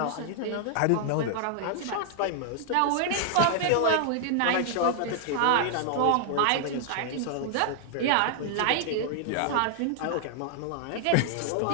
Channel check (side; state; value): both; different; correlation -0.01